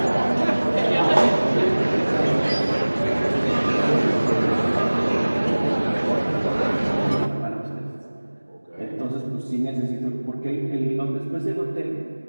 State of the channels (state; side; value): inverted; both; correlation -1.00